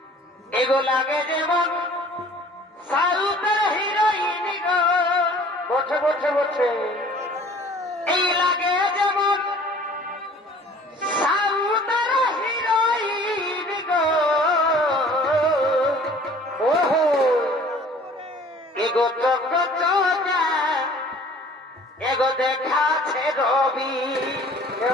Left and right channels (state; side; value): normal; both; correlation 0.50